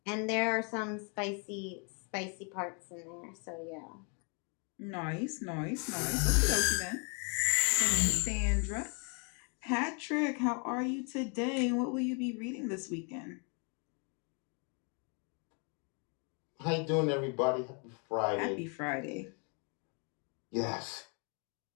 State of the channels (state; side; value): quieter; right; 37.2 dB